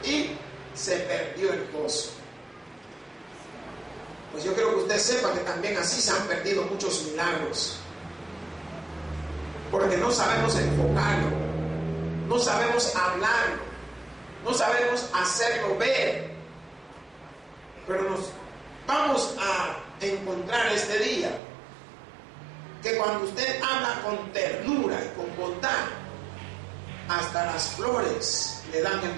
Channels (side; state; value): left; drops out; at 21.4 s